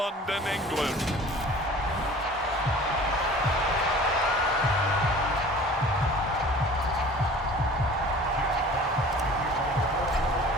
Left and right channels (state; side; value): normal; both; correlation 0.45